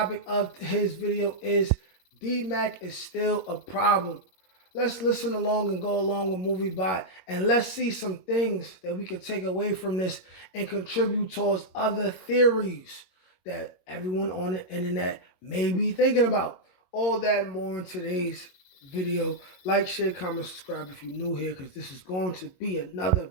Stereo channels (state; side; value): late; right; 22 ms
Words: of his video is Dmac is still a problem. Let's listen along and go along with Movie Bot, and let's see some things that we can take away from this and contribute towards other theories that everyone on the internet may be thinking about. All that and more in today's video. Like, share, comment, subscribe if you're new here, because this is going to be another